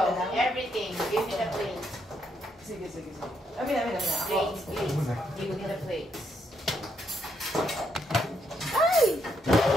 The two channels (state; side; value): normal; both; correlation 0.76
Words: Everything. Give me the plates. Sige. Amin. Ako. Plates, please. Give me the plates. Ay!